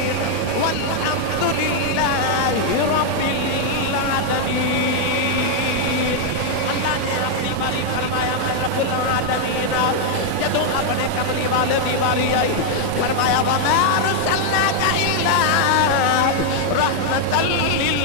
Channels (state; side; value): different; both; correlation 0.00